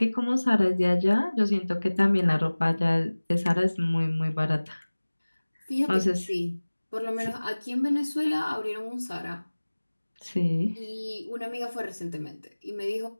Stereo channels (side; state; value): both; inverted; correlation -1.00